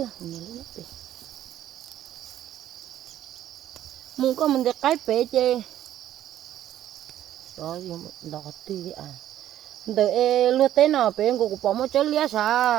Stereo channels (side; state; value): left; quieter; 12.0 dB